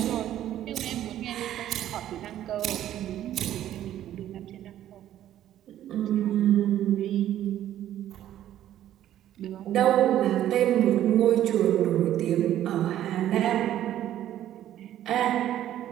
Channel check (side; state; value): left; quieter; 12.1 dB